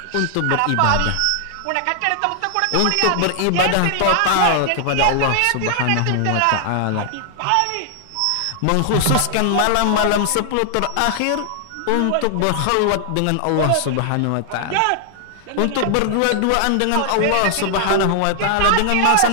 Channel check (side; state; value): both; different; correlation 0.00